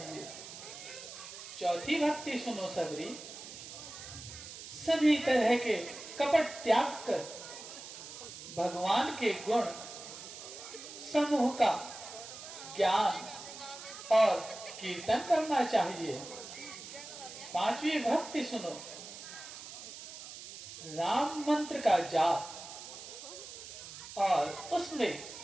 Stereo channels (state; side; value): noise; right; hiss, 12 dB below the sound